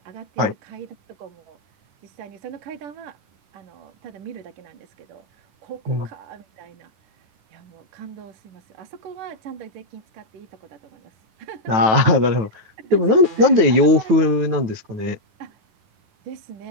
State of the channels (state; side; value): late; left; 9.3 ms